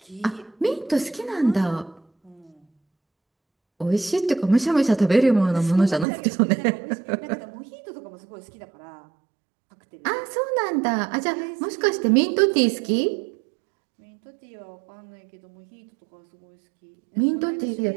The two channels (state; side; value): drops out; left; at 6.1 s